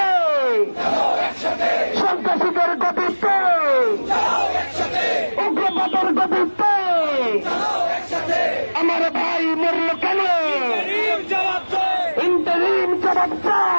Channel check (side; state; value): both; inverted; correlation -1.00